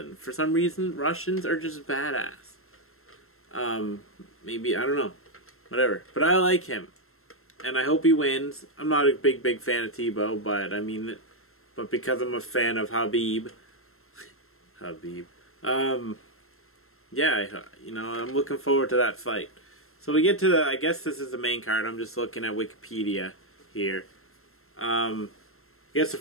For some reason, Russians are just badass. Maybe, I don't know. Whatever. But I like him. And I hope he wins. I'm not a big fan of Tibau, but because I'm a fan of Khabib. Yeah, I'm looking forward to that fight. So we get to I guess this is the main card. I'm just looking at Wikipedia here. I guess the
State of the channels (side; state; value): right; late; 0.62 ms